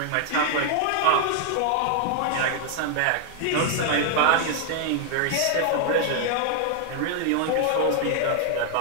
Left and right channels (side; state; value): both; different; correlation 0.00